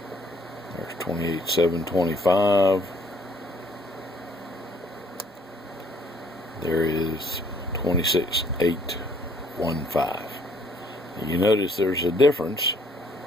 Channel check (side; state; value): both; normal; correlation 0.63